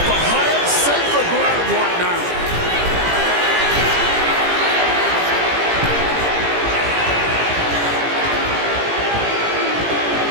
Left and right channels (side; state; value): left; late; 17 ms